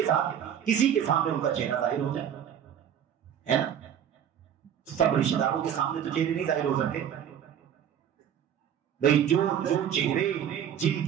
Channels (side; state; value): left; quieter; 9.2 dB